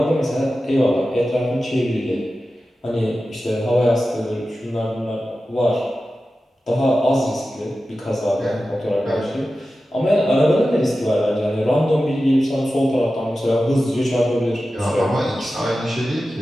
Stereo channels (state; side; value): normal; both; correlation 0.93